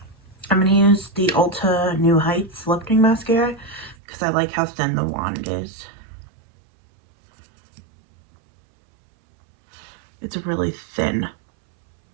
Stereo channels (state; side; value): drops out; left; at 4.0 s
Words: I'm gonna use the Ulta New Heights Lifting Mascara, because I like how thin the wand is. It's a really thin